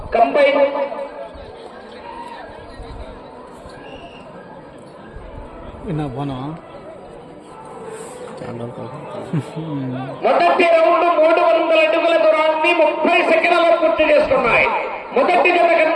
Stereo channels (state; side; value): identical; both; correlation 1.00